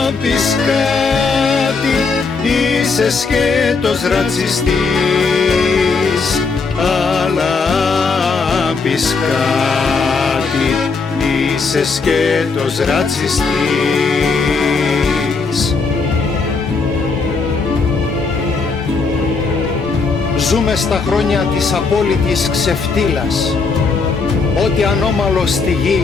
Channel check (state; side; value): quieter; right; 4.6 dB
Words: πεις κάτι, είσαι σκέτος ρατσιστής. Αλλά πεις κάτι, είσαι σκέτος ρατσιστής. Ζούμε στα χρόνια της απόλυτης ξεφτύλας. Ό,τι ανώμαλο στη γη